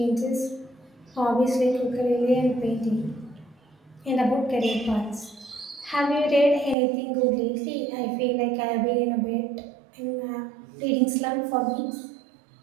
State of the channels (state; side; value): drops out; left; at 6.8 s